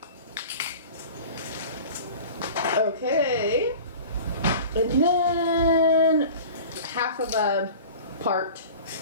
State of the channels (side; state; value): both; inverted; correlation -0.39